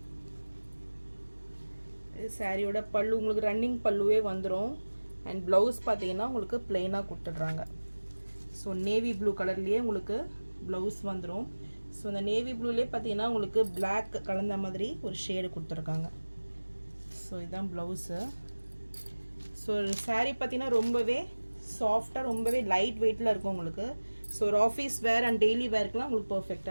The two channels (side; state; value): both; inverted; correlation -1.00